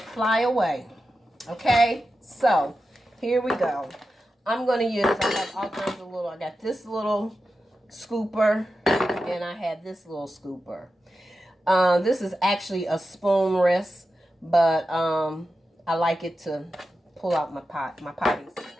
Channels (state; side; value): normal; both; correlation 0.91